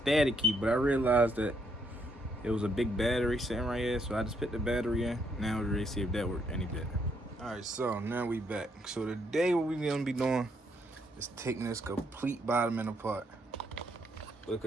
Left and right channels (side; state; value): both; normal; correlation 0.74